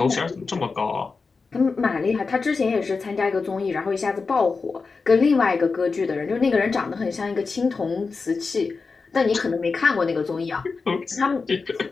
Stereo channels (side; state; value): right; quieter; 4.5 dB